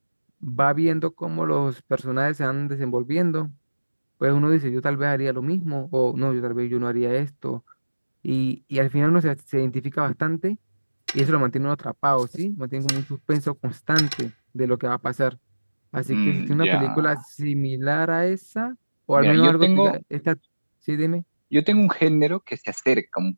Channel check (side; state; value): both; inverted; correlation -1.00